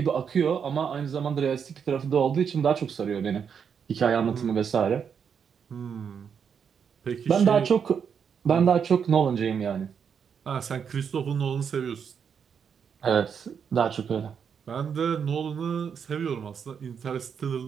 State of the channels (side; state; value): left; quieter; 7.1 dB